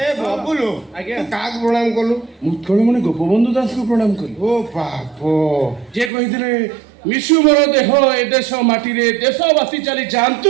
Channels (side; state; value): left; drops out; at 6.1 s